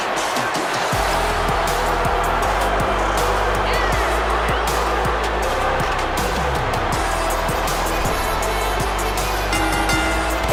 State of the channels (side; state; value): both; identical; correlation 1.00